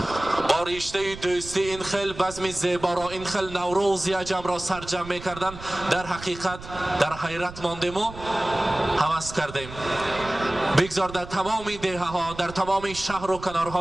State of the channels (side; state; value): right; noise; rumble, 14 dB below the sound